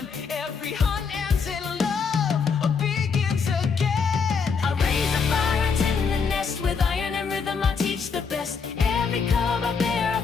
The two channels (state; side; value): quieter; right; 5.6 dB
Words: Every hunt ends in love or begins again. I raise a fire, I tend the nest. With iron and rhythm I teach the best. Every cub I bear